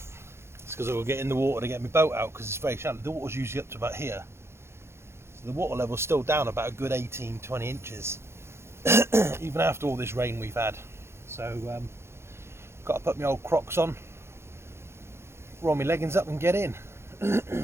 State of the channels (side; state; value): left; late; 0.12 ms